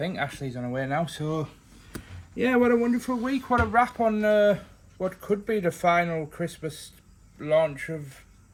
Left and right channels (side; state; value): both; identical; correlation 1.00